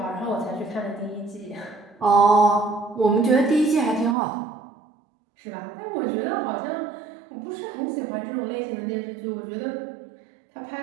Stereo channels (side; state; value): left; drops out; at 4.2 s